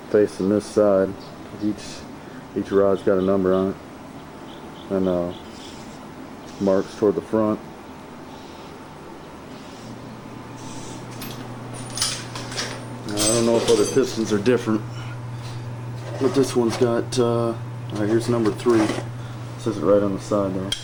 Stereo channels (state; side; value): identical; both; correlation 1.00